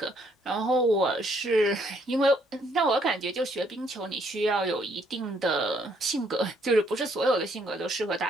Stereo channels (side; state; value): both; normal; correlation 0.69